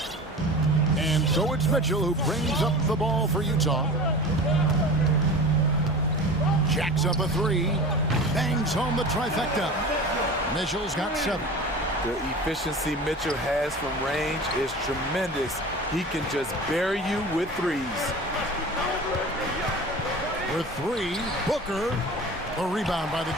And so it's Mitchell who brings up the ball for Utah. Jacks up a 3. Bangs home the trifecta. Mitchell's got 7. The efficiency Mitchell has from range is tremendous. He can just bury you with 3s. For 3, Booker. A rebound by the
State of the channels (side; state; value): both; normal; correlation 0.35